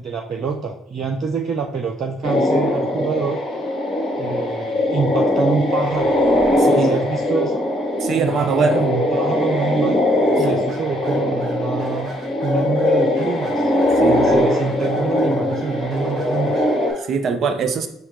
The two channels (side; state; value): both; normal; correlation 0.69